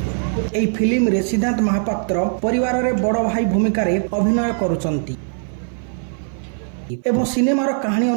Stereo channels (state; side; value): silent; left; 57 dB below the other